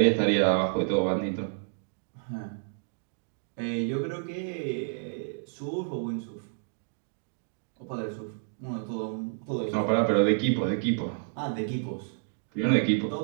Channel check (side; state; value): left; silent; digital silence